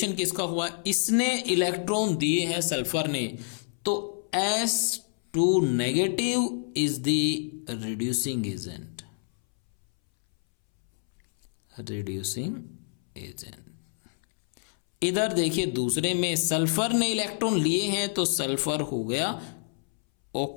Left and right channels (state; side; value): silent; right; 60 dB below the other